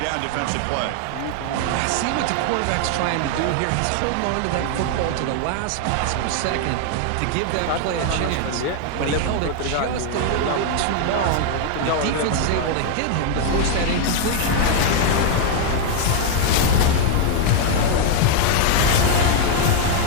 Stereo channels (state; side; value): different; both; correlation 0.00